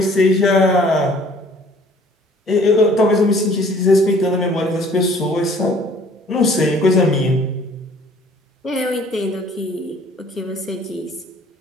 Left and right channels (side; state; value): both; normal; correlation 0.55